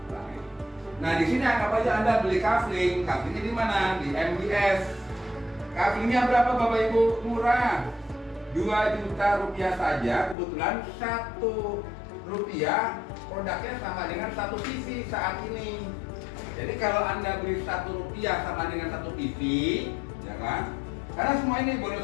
Nah, di sini anggap aja Anda beli kafling. Kaflingnya di mana? Di MBS. Kaflingnya berapa, Bapak Ibu? Murah. 2 juta rupiah saja. Kebetulan 1 rupiah produknya sama dengan 1 TV saat ini. Jadi kalau Anda beli 1 rupiah sama dengan 1 TV, ya kan? Karena semua ini bonus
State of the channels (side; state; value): right; drops out; at 10.4 s